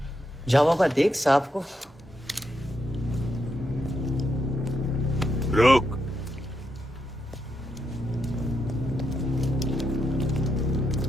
जाओ बाबा, देख साहब को। रुक।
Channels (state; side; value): normal; both; correlation 0.82